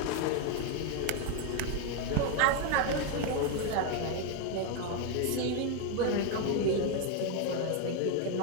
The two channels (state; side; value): different; both; correlation 0.01